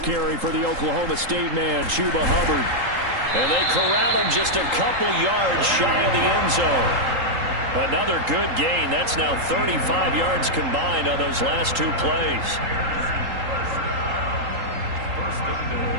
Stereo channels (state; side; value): late; left; 3.8 ms